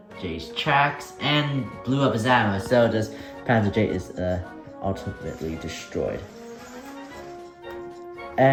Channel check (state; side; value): identical; both; correlation 1.00